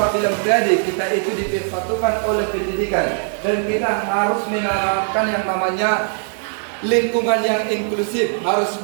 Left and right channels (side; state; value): left; silent; 57 dB below the other